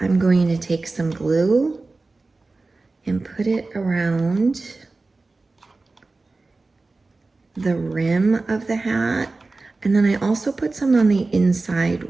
I'm going to take some glue and put it around the rim of the hat. And then I also put some on the inside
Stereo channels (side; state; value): left; quieter; 3.5 dB